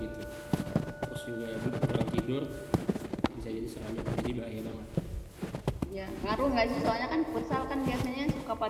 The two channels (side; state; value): both; identical; correlation 1.00